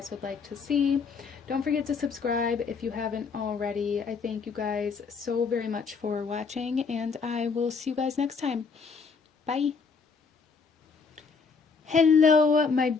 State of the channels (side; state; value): right; quieter; 5.2 dB